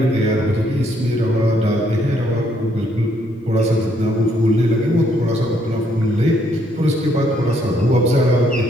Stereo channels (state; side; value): normal; both; correlation 0.70